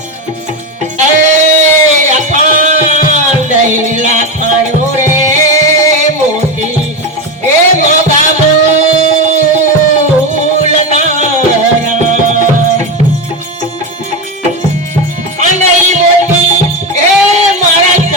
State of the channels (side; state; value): both; normal; correlation 0.14